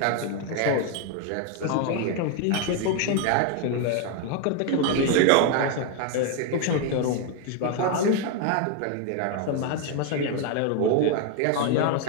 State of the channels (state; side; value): different; both; correlation 0.01